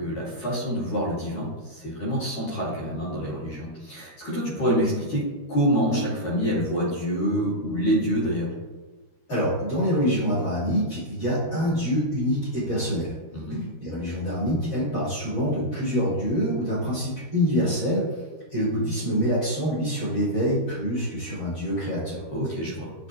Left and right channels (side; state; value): right; late; 13 ms